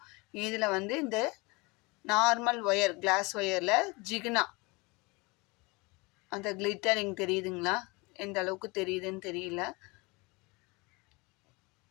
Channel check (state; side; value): quieter; right; 26.2 dB